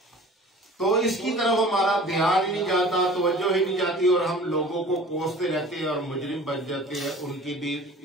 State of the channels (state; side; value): normal; both; correlation 0.44